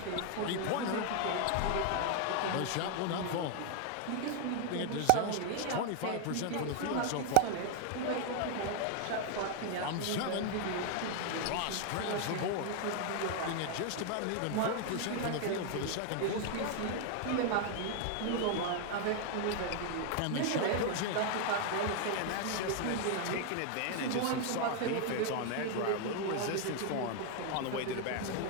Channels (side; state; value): both; different; correlation 0.00